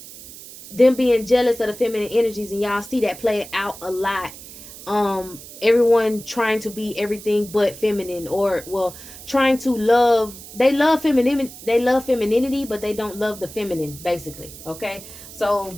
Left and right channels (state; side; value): noise; right; hiss, 16 dB below the sound